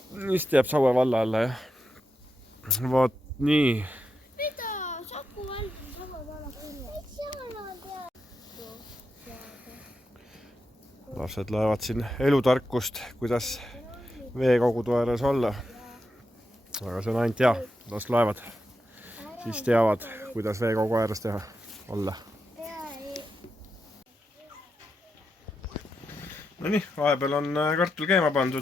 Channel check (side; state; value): both; normal; correlation 0.86